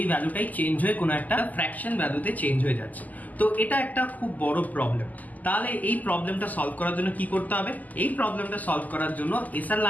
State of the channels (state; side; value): late; right; 0.080 ms